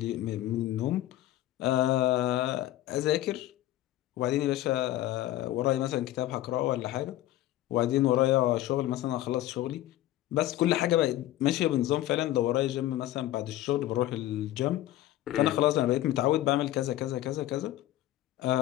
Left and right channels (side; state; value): right; quieter; 14.4 dB